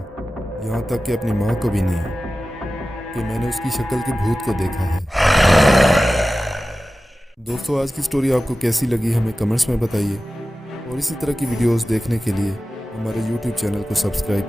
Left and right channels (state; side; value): normal; both; correlation 0.95